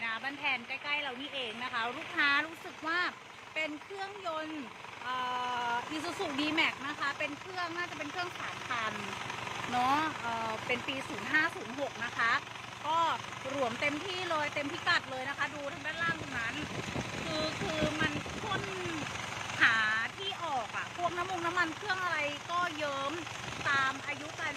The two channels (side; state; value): both; identical; correlation 1.00